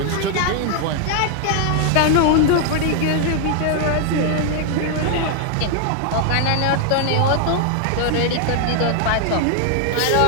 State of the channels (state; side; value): different; both; correlation 0.00